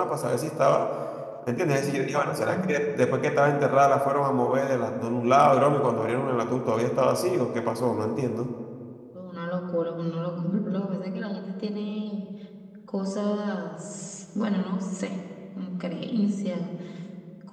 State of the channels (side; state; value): both; identical; correlation 1.00